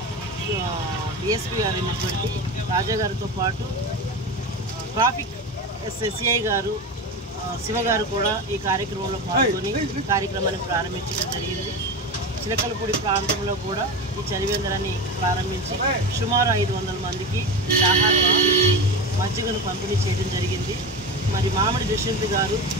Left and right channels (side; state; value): both; normal; correlation 0.23